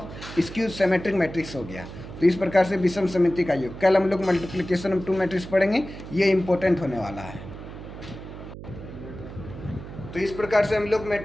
skew symmetric matrix हो गया। तो इस प्रकार से विषम समिति का योग। कल हम लोग मल्टीप्लिकेशन ऑफ 2 मैट्रिक्स पढ़ेंगे, ये इंपॉर्टेंट होने वाला है। तो इस प्रकार से हम लोग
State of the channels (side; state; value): right; noise; hum, 12 dB below the sound